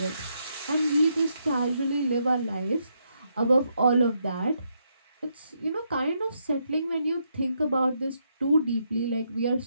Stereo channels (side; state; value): both; inverted; correlation -0.78